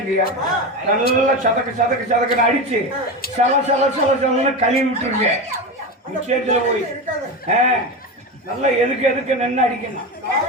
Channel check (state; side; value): normal; both; correlation 0.21